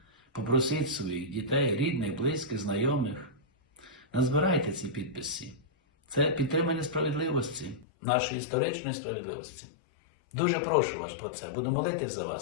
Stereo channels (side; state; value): right; drops out; at 7.9 s